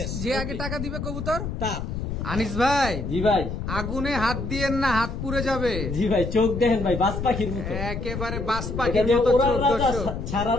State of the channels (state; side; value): noise; left; rumble, 5 dB below the sound